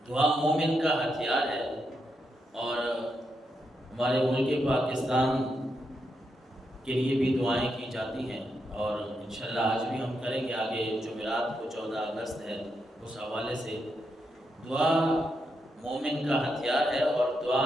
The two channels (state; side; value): normal; both; correlation 0.83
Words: دعا مومن کا ہتھیار ہے، اور ہمارے ملک پاکستان کے لیے بھی دعائیں کی جاتی ہیں، اور انشاءاللہ آج بھی ہم کریں گے۔ آگے جمعرات کو 14 اگست ہے، اس حوالے سے دعا مومن کا ہتھیار ہے، اور دعا